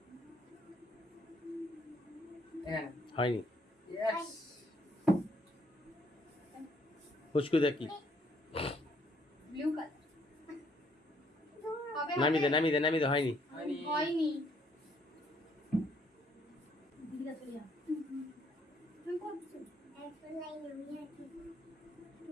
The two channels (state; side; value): normal; both; correlation 0.67